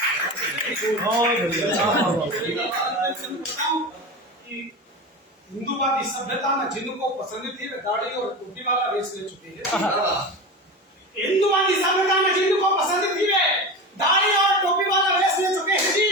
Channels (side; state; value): both; normal; correlation 0.26